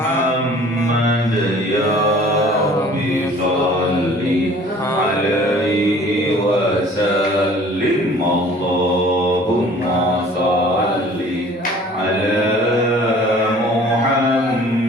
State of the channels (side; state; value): both; normal; correlation 0.50